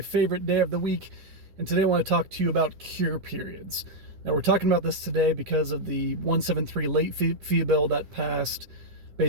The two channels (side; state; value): left; late; 10 ms